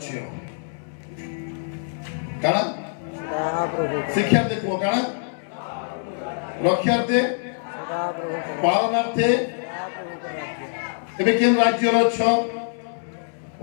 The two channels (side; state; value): right; silent; 62 dB below the other